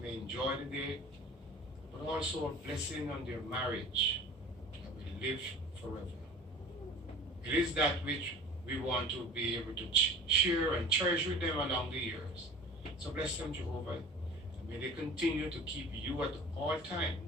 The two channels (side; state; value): both; normal; correlation 0.40